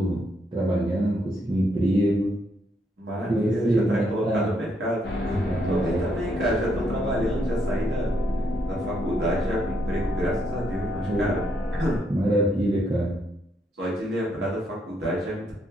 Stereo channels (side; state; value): both; normal; correlation 0.75